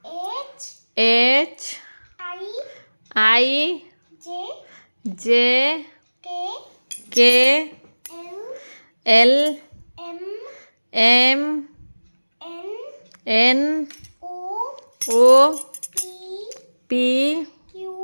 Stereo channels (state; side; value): inverted; both; correlation -1.00